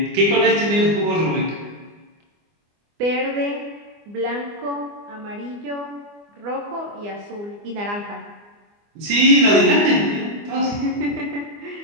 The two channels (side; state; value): left; late; 25 ms